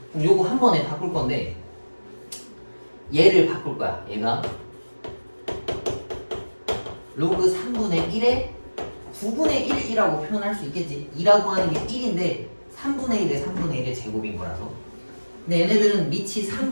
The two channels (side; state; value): both; inverted; correlation -1.00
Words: 그럼 요거 한 번에 바꿀 건데, 얘를 바꿀 거야. 얘가 로그 3분의 1의 9분의 1이라고 표현할 수 있겠지. 2라고 하는 게 1인데 3분의 1의 3분의 1의 제곱인 거라서. 근데 얘네들은 밑이